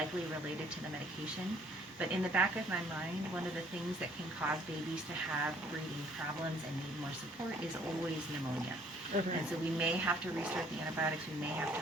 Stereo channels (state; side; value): normal; both; correlation 0.61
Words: related to the medication. But in the back of my mind, one of the things that can cause babies to have breathing problems and need more support is always pneumonia. Okay. And so we may have to restart the antibiotics. We may have to